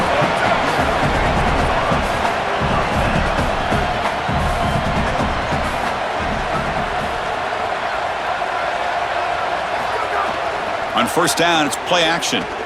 On 1st down, it's play action.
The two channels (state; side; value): identical; both; correlation 1.00